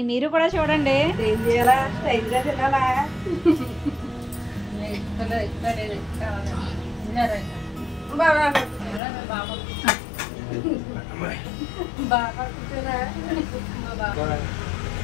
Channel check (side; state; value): right; drops out; at 9.0 s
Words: మీరు కూడా చూడండి.